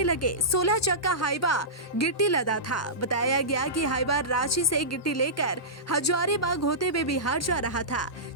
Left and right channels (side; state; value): both; normal; correlation -0.17